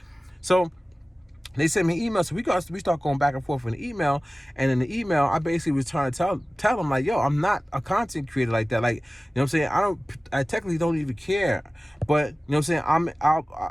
So they sent me emails. So we start going back and forth in the email. And in the email, I basically was trying to tell them, like, yo, I'm not a content creator like that. Like, what I'm saying? I technically don't even care. But, what I'm saying?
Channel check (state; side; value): normal; both; correlation 0.97